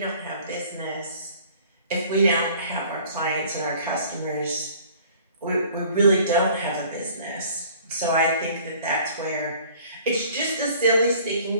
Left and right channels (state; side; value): inverted; both; correlation -0.52